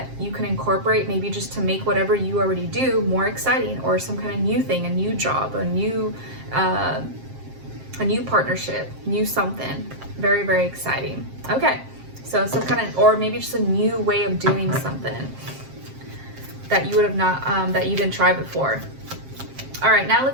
you can incorporate, maybe just to make whatever you already do more exciting, or some kind of new thing, a new job, a new partnership, new something. Very, very exciting. Okay, so some kind of, or maybe just a new way of doing something that you would have not, that you didn't try before. All right, now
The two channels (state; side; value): late; left; 7.5 ms